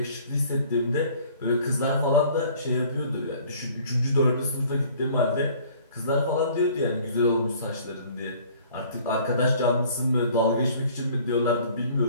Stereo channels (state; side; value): inverted; both; correlation -0.53